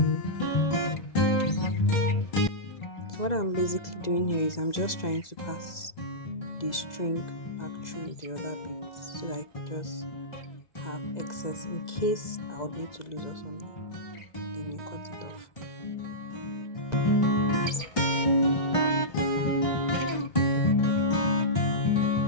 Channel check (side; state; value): right; late; 2.0 ms